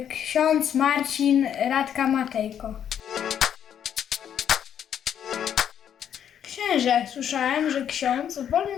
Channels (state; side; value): quieter; right; 9.2 dB